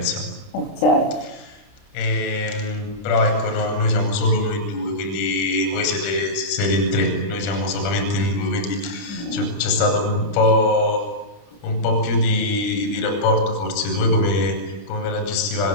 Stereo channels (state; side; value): late; right; 30 ms